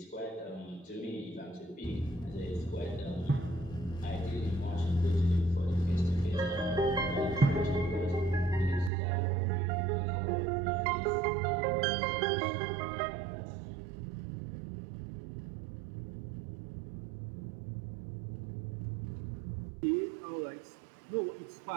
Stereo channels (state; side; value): drops out; left; at 8.9 s